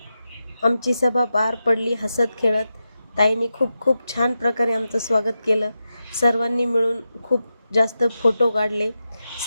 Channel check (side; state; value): both; inverted; correlation -0.90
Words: आमची सभा पार पडली. हसत खेळत ताईंनी खूप छान प्रकारे आमचं स्वागत केलं. सर्वांनी मिळून खूप जास्त फोटो काढले.